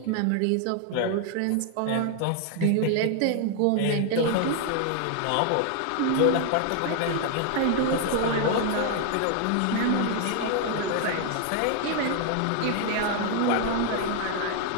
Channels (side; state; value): both; different; correlation 0.00